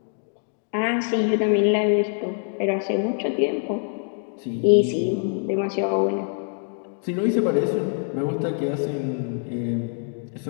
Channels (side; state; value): right; silent; 56 dB below the other